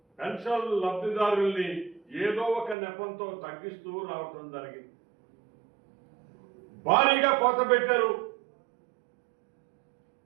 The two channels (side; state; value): left; drops out; at 2.8 s